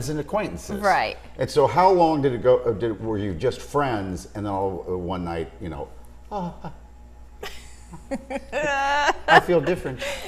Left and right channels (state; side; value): identical; both; correlation 1.00